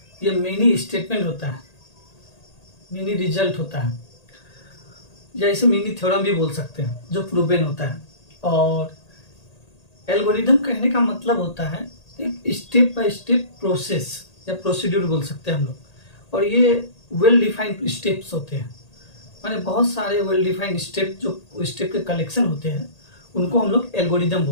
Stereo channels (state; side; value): late; right; 1.8 ms